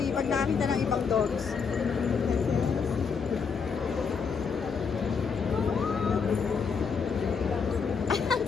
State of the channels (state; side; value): quieter; right; 5.8 dB